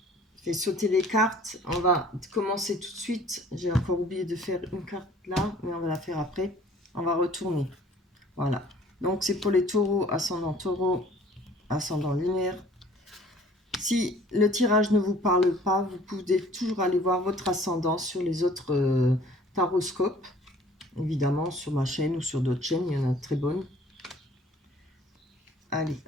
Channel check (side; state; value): both; normal; correlation 0.53